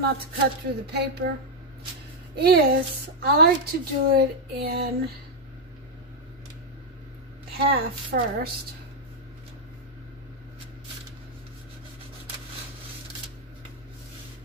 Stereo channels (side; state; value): both; normal; correlation 0.01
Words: to cut through the paper, is I like to do it in half first.